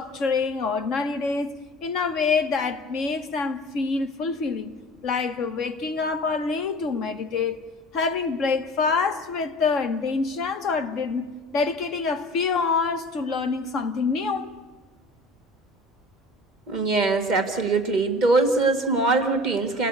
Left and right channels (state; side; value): normal; both; correlation 0.41